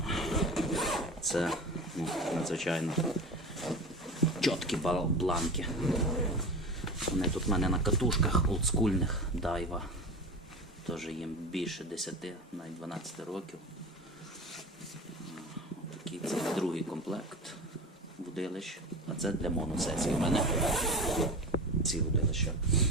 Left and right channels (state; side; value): normal; both; correlation 0.31